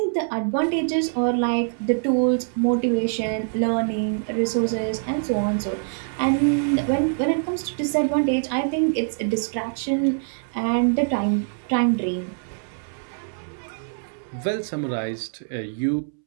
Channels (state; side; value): silent; left; 62 dB below the other